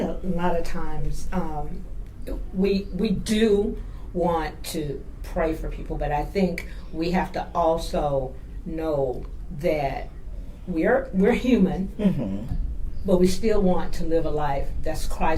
a lot of times we do want to pray for people, but I think we have to also know that we're human, but we still want to live a life that's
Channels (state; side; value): identical; both; correlation 1.00